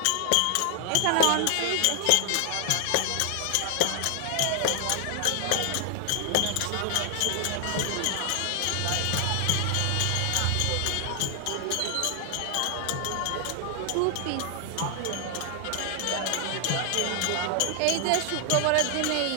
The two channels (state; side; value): different; both; correlation 0.00